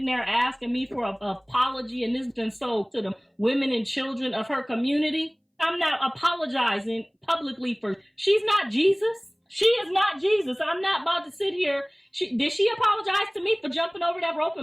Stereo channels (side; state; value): both; identical; correlation 1.00